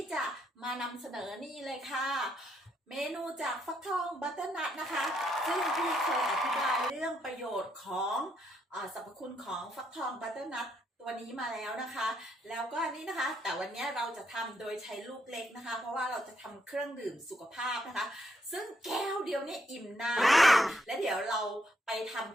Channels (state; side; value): normal; both; correlation 0.75